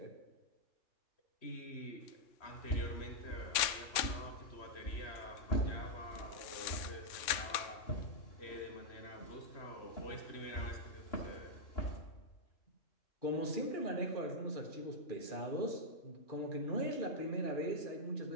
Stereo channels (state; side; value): late; right; 3.5 ms